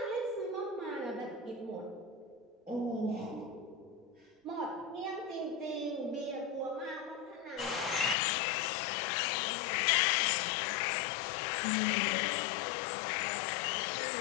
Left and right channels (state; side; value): drops out; right; at 8.2 s